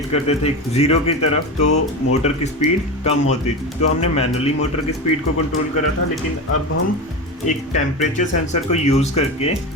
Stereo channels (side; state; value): both; normal; correlation 0.22